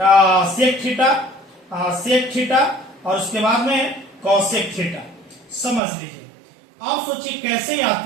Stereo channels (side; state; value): left; drops out; at 5.8 s